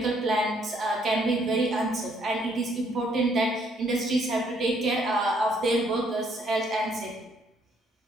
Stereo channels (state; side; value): normal; both; correlation 0.67